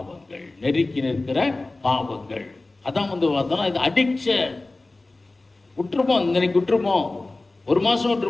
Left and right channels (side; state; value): right; quieter; 3.1 dB